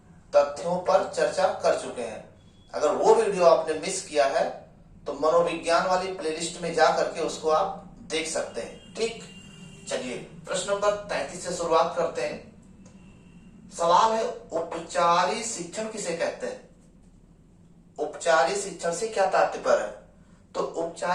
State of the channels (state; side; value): identical; both; correlation 1.00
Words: तथ्यों पर चर्चा कर चुके हैं। अगर वो वीडियो आपने मिस किया है तो मनोविज्ञान वाली प्लेलिस्ट में जा करके उसको आप देख सकते हैं। ठीक, चलिए प्रश्न नंबर 33 से शुरुआत करते हैं। सवाल है, उपचारी शिक्षण किसे कहते हैं? उपचारी शिक्षण से क्या तात्पर्य है? तो